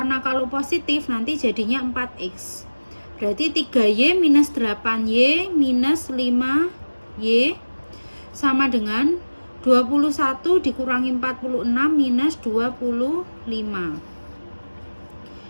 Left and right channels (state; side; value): inverted; both; correlation -1.00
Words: kalau positif nanti jadinya 4x. Berarti 3y minus 8y minus 5y sama dengan 21 dikurangi 46 minus 25.